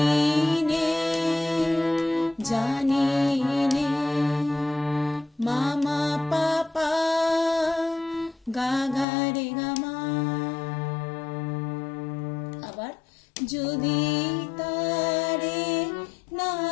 জানিনে মা মা পা পা গা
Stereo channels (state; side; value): drops out; right; at 9.1 s